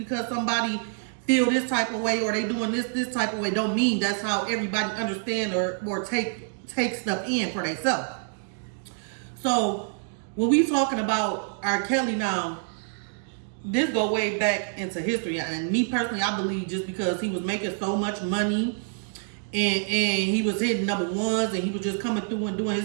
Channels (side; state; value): left; silent; 60 dB below the other